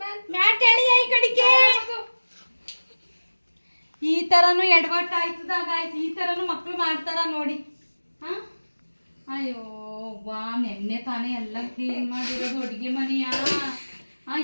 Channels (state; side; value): inverted; both; correlation -1.00